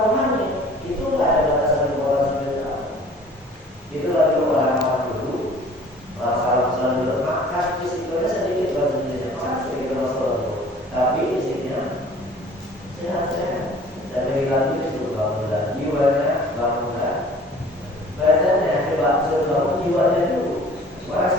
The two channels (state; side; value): normal; both; correlation 0.49